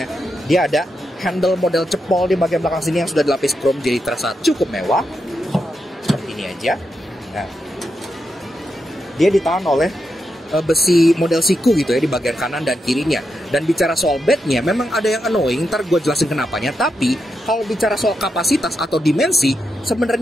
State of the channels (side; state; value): both; normal; correlation 0.85